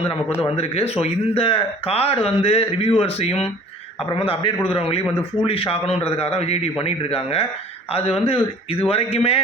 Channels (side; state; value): both; normal; correlation 0.49